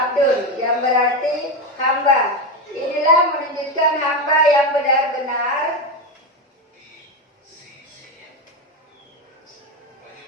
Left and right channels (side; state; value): both; normal; correlation 0.13